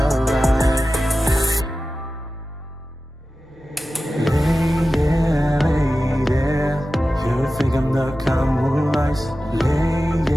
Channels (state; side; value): normal; both; correlation 0.94